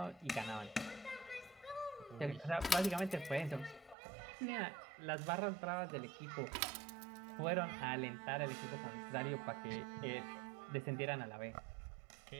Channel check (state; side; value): drops out; left; at 4.0 s